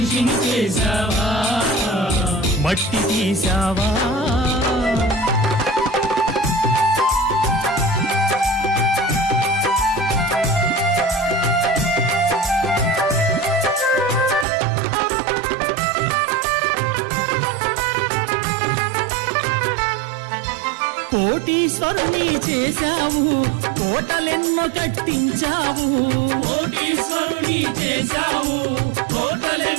చేశావా మట్టి తీసావా కోటీశ్వరుని చేశావు కోటలెన్నో కట్టించావు కోటీశ్వరుని చేశావు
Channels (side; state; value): left; drops out; at 14.5 s